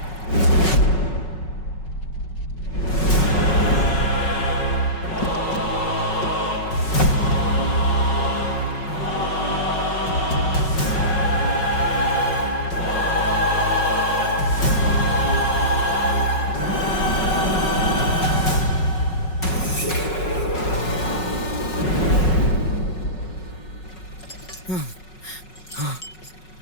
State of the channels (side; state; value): right; late; 5.4 ms